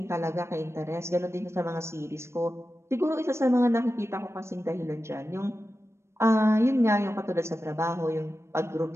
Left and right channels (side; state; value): left; late; 0.13 ms